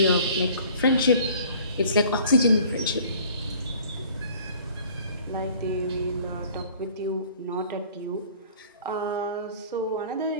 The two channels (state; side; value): inverted; both; correlation -0.51